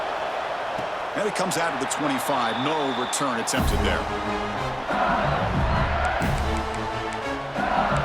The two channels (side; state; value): both; identical; correlation 1.00